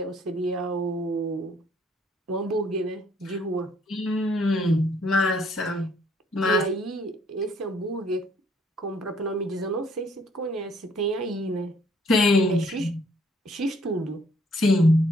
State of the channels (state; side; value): normal; both; correlation 0.64